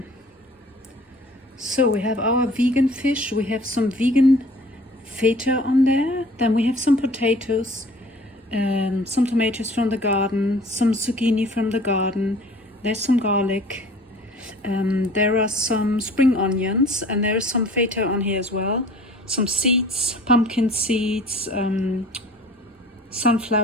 So we have our vegan fish, we have some vegan feta on there, then we have some potatoes, some tomatoes from the garden, some zucchini from the garden, there's some garlic, there are some spring onions, and there is some feta on here as well, some seeds, pumpkin seeds,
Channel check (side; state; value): both; normal; correlation 0.49